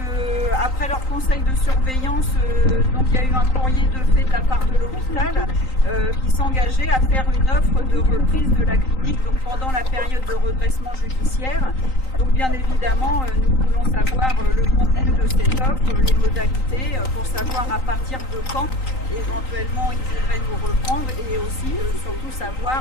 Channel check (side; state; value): right; late; 3.9 ms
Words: après leur conseil de surveillance, donc il y a eu un courrier de fait de la part de l'hôpital qui s'engageait à faire une offre de reprise de la clinique donc pendant la période de redressement judiciaire. Donc bien évidemment nous voulons savoir le contenu de cette offre, les modalités pour savoir à partir de quand éventuellement ils voudraient nous reprendre et aussi surtout